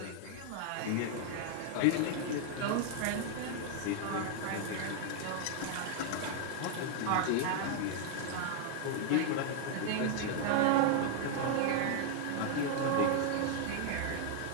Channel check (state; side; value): different; both; correlation 0.00